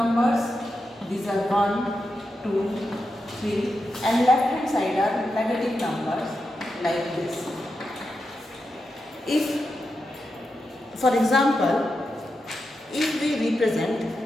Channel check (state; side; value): normal; both; correlation 0.88